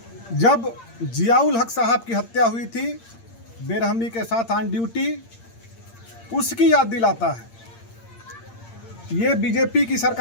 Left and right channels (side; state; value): right; late; 8.7 ms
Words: जब जियाउल हक साहब की हत्या हुई थी बेरहमी के साथ ऑन ड्यूटी, उसकी याद दिलाता है। ये बीजेपी की